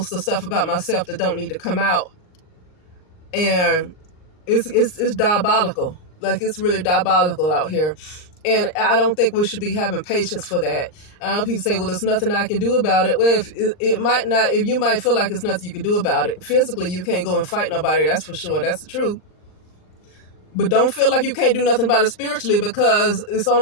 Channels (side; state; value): right; late; 39 ms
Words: the stuff about myself that don't need to come out. And it's diabolical. Like, it's really diabolical out here. And I don't think we should be having patience for that. People say, well, there's nothing I can do about it. Well, if it might not, if you might feel like there's nothing you can do about it. Physically, you can't go and fight nobody. That's for sure. That's the truth. But don't feel like you can't do nothing about it spiritually, because it's